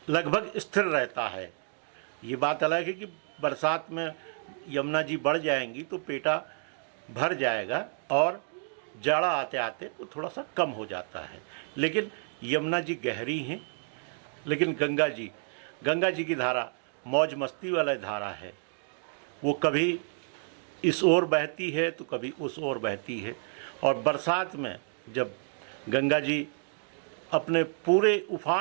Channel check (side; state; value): left; silent; 58 dB below the other